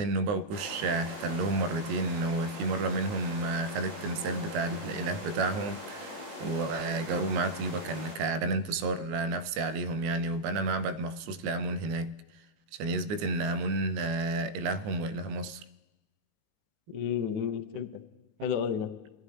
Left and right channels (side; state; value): left; late; 19 ms